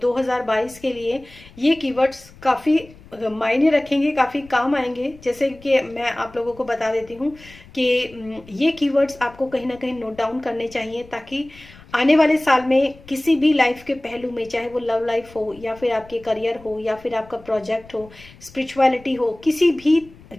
के लिए ये कीवर्ड्स काफ़ी मायने रखेंगे, काफ़ी काम आएंगे। जैसे कि मैं आप लोगों को बता देती हूँ कि ये कीवर्ड्स आपको कहीं ना कहीं नोट डाउन करने चाहिए, ताकि आने वाले साल में किसी भी लाइफ के पहलू में, चाहे वो लव लाइफ हो या फिर आपके करियर हो या फिर आपका प्रोजेक्ट हो, स्पिरिचुअलिटी हो, किसी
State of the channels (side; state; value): left; noise; rumble, 22 dB below the sound